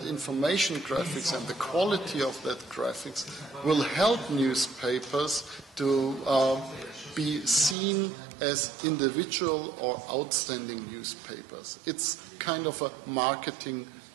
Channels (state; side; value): drops out; left; at 7.8 s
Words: information graphics and the quality of that graphics will help newspapers to be seen as individual or outstanding newspapers. It's kind of a marketing